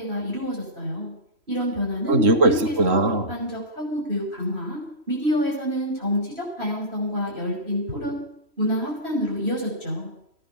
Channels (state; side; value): late; left; 3.1 ms